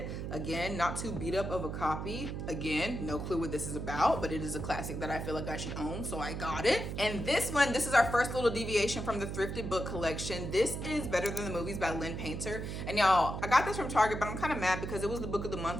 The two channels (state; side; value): noise; right; hum, 5 dB below the sound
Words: Again, not too beat up of a copy. Again, no clue what this is about, but it is a classic that I feel like I should own, so I got it. And this one, this is our first little deviation from the thrifted book collection. This is Better Than the Movies by Lynn Painter. And y'all, I got this from Target, but I'm kind of mad because it was the book of the